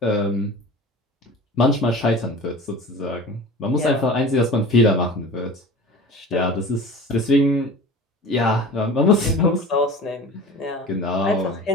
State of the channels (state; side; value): normal; both; correlation 0.37